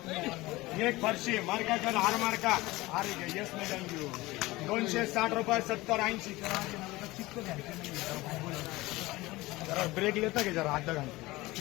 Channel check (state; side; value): quieter; right; 20.0 dB